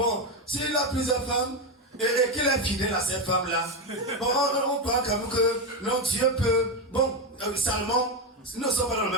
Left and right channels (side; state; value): both; normal; correlation 0.10